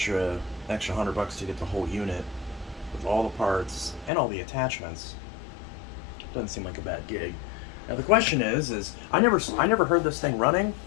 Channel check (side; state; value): right; drops out; at 4.1 s